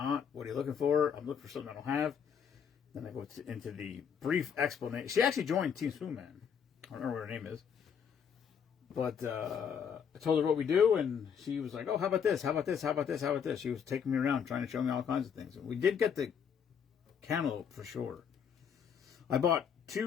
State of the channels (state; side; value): quieter; right; 7.4 dB